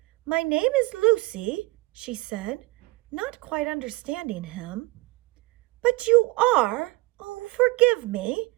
my name is Lucy," she said, not quite understanding him. "But you are, oh, forgive me,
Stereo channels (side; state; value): left; quieter; 22.6 dB